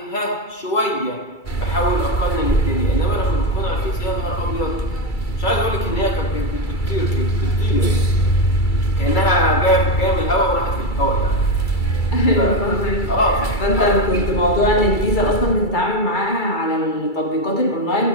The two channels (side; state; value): right; late; 2.3 ms